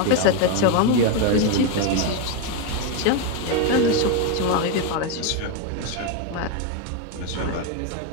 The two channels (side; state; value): both; different; correlation 0.02